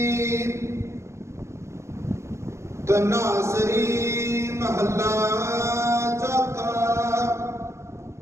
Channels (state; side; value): late; left; 0.13 ms